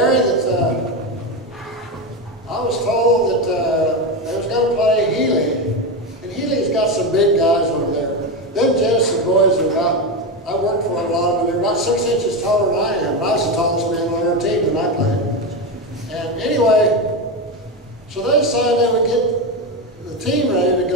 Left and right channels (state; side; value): normal; both; correlation 0.15